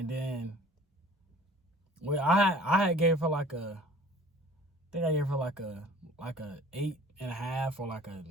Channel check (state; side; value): normal; both; correlation 0.48